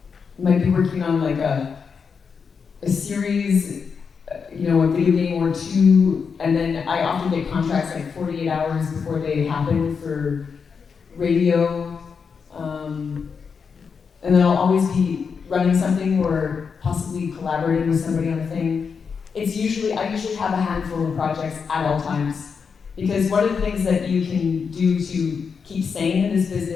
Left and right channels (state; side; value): quieter; right; 5.9 dB